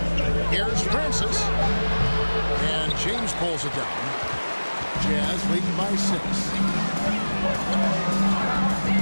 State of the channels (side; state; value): both; inverted; correlation -1.00